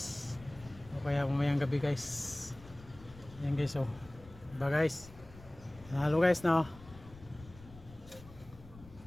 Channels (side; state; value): left; noise; rumble, 19 dB below the sound